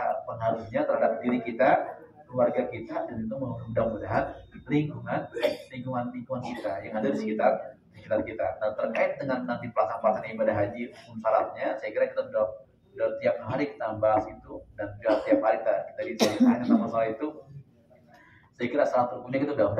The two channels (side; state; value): both; identical; correlation 1.00